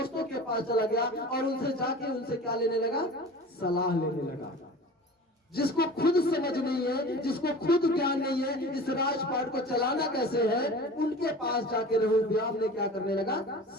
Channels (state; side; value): normal; both; correlation 0.38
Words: के पास चला गया और उनसे जाके उनसे क्या लेने लगा? सलाह लेने लगा। जिसको खुद समझ नहीं है, जिसको खुद ज्ञान नहीं है इस राजपाट को चलाना कैसे है, उनके पास जाके रहोबियाम ने क्या करने लगा?